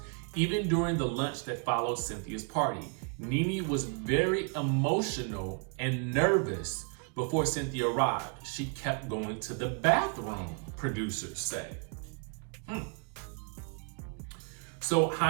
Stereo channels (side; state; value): left; quieter; 38.9 dB